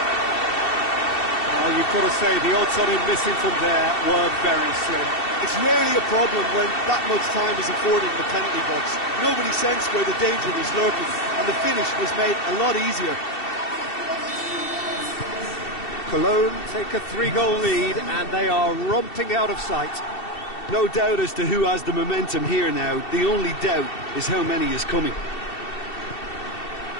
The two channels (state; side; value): late; right; 2.7 ms